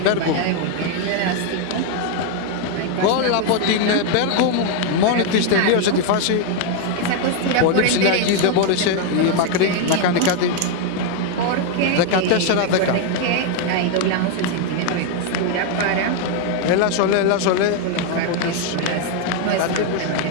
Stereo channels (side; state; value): both; different; correlation 0.01